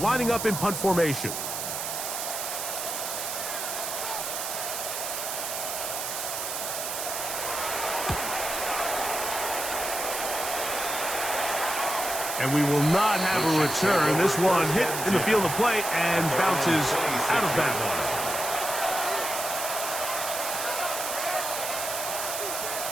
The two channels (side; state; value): right; noise; hiss, 4 dB below the sound